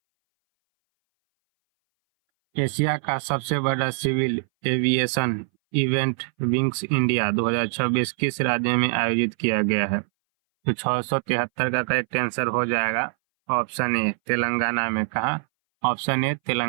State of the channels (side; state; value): left; silent; 60 dB below the other